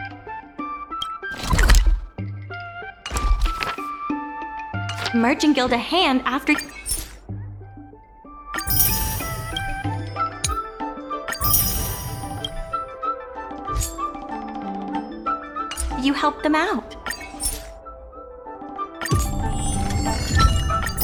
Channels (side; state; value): both; identical; correlation 1.00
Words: Merchant Guild a hand after you helped them out.